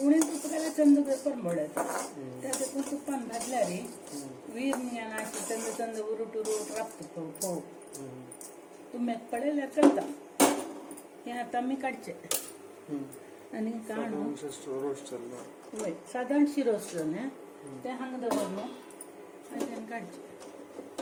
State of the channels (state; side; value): identical; both; correlation 1.00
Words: उणे तूप घाल्यार चंद परमळ्यात त्या देखून तुपान भाजल्यार वीर अशी चंद चंद उरूट उरूट राबता फोव तुमक पडल्यार करता हे आता आमी काडचे आनी काडून वय साधारण शिरोस जालें ते हांगा दवरलो आनी काडचे